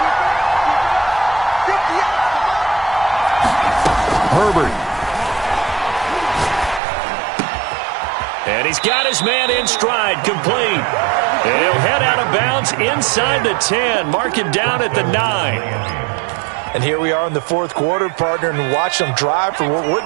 Herbert. And he's got his man in stride, complete. And he'll head out of bounds inside the 10. Mark him down at the 9. And here we are in the 4th quarter, partner, and watch them drive for what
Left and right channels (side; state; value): left; drops out; at 6.8 s